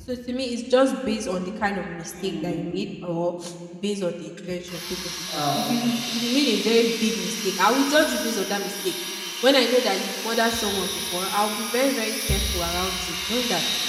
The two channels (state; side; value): identical; both; correlation 1.00